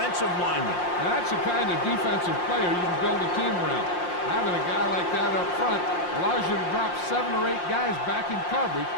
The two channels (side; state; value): right; late; 5.7 ms